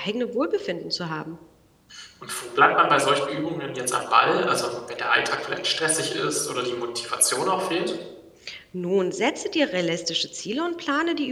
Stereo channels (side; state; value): both; identical; correlation 1.00